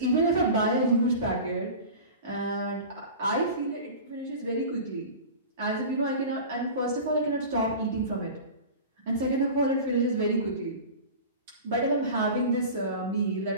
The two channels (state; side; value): inverted; both; correlation -0.34